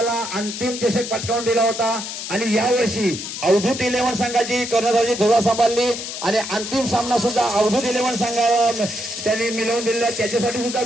अंतिम चषक पटकावून दिला होता. आणि यावर्षी अवधूत 11 संघाची कर्णधाराची धुरा सांभाळली आणि अंतिम सामना सुद्धा अवधूत 11 संघाला त्यांनी मिळवून दिला. त्याच्यासाठी सुद्धा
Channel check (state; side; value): noise; left; hiss, 7 dB below the sound